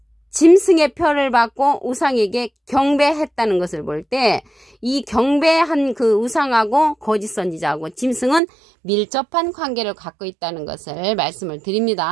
짐승의 표를 받고 우상에게 경배했다는 것을 볼 때 이 경배한 그 우상하고 거짓 선지자하고 짐승은 밀접한 관계를 갖고 있다는 것을 말씀을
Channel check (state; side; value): drops out; left; at 8.4 s